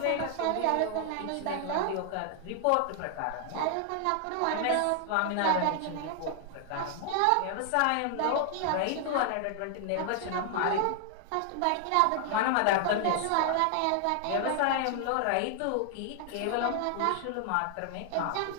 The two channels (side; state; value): both; different; correlation 0.00